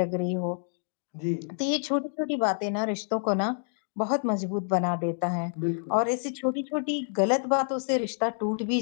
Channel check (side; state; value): right; silent; digital silence